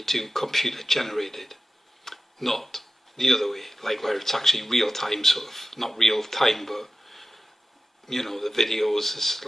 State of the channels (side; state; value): both; normal; correlation 0.94